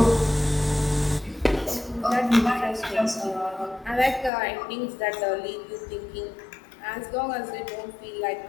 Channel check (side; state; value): right; drops out; at 4.3 s